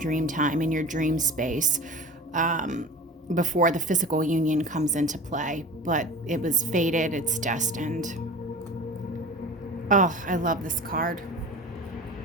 time, in your dream space, before the physical union comes into play. But it was fated, it's destined. Oh, I love this card.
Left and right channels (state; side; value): normal; both; correlation 0.36